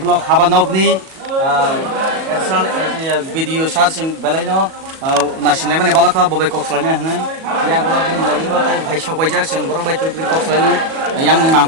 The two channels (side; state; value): left; late; 37 ms